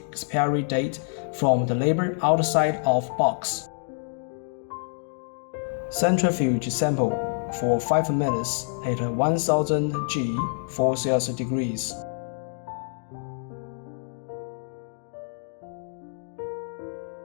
expiry date from the label outside of box. Centrifuge sample for 5 minutes at 1000 G for Celsius degrees.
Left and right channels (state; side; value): silent; right; 60 dB below the other